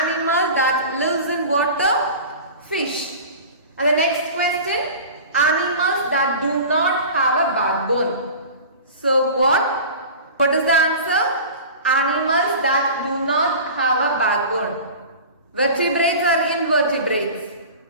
that lives in water, fish. And the next question, animals that do not have a backbone. So what is the answer? Animals that do not have a backbone. Vertebrates or invertebrates?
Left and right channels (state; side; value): inverted; both; correlation -0.37